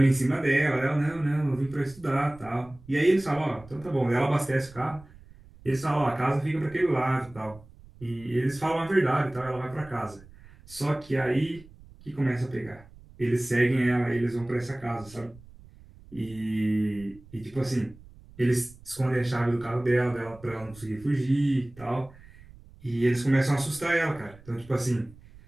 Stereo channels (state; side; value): noise; right; rumble, 22 dB below the sound